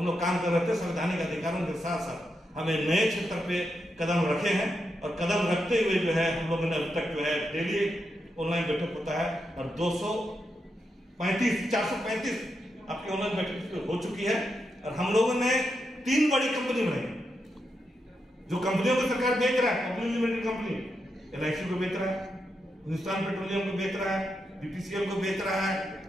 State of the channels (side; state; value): both; normal; correlation 0.85